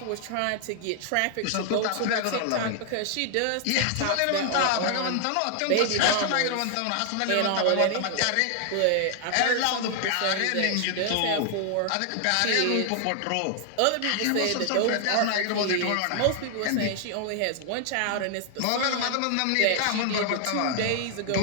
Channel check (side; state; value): both; different; correlation 0.00